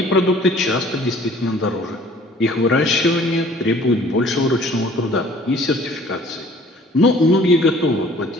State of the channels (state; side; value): normal; both; correlation 0.53